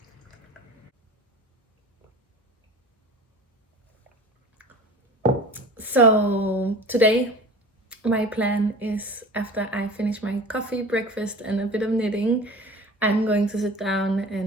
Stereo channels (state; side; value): normal; both; correlation 0.39